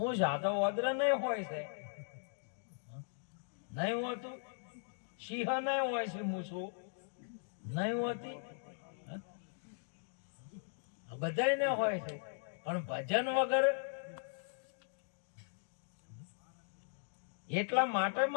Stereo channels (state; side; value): silent; right; digital silence